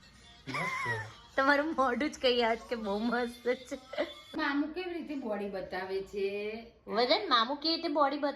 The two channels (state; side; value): identical; both; correlation 1.00